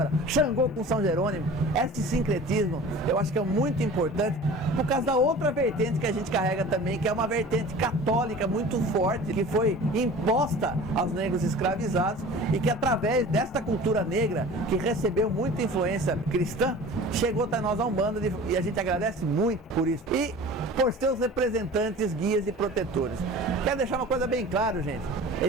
Xangô com São Jerônimo. Esse sincretismo eu acho que é muito importante por causa da outra vertente que a gente carrega também, que é uma vertente católica muito forte, que foi imposta aos negros escravizados e que através desta cultura negra, que recebeu muita influência cristã, chegou até nós a Umbanda e a gente agradece muito por isso. E por seus representantes, guias e protetores. Quero deixar uma coisa bem clara, gente.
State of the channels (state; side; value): normal; both; correlation 0.40